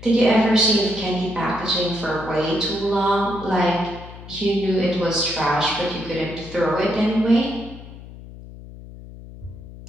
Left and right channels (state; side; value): noise; left; hum, 16 dB below the sound